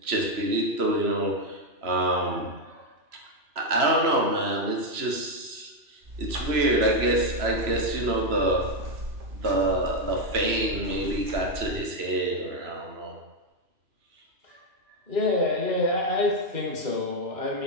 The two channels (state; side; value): late; left; 3.0 ms